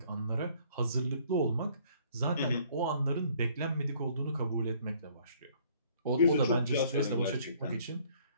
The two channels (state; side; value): inverted; both; correlation -0.59